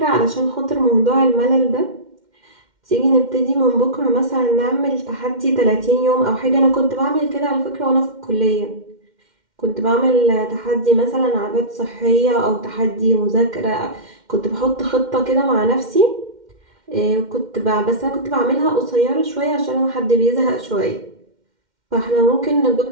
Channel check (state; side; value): late; left; 2.1 ms